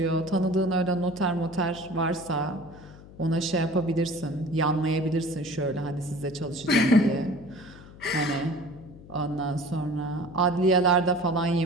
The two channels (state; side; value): noise; left; hum, 19 dB below the sound